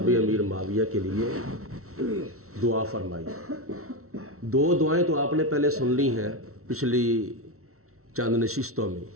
امیر معاویہ کے لیے دعا فرمائی۔ دو دعائیں تو آپ نے پہلے سن لی ہیں پچھلی چند نشستوں میں،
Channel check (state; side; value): late; left; 0.63 ms